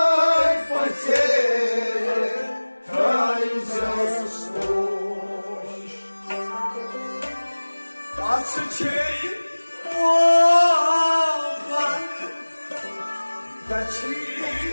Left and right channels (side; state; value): both; inverted; correlation -1.00